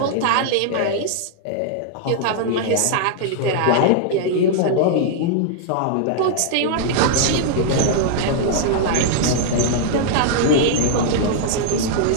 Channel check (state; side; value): different; both; correlation -0.01